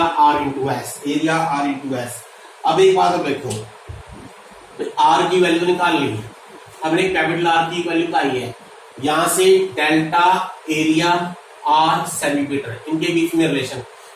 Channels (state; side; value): identical; both; correlation 1.00